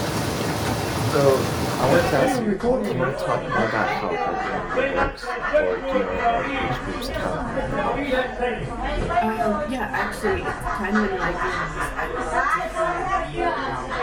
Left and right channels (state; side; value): identical; both; correlation 1.00